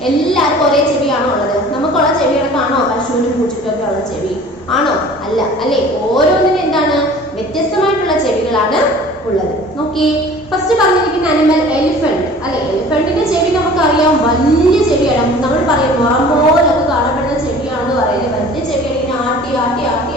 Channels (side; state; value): both; normal; correlation 0.46